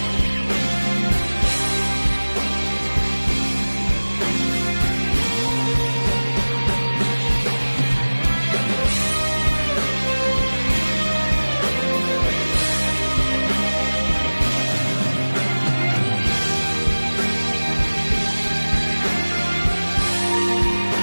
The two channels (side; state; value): both; inverted; correlation -1.00